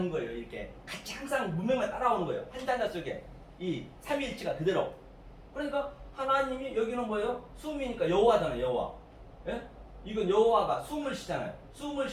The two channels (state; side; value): identical; both; correlation 1.00